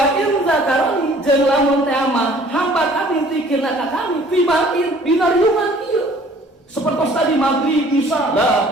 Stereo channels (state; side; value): normal; both; correlation 0.54